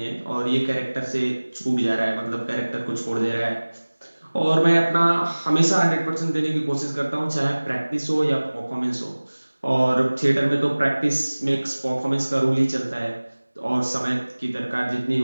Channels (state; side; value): inverted; both; correlation -1.00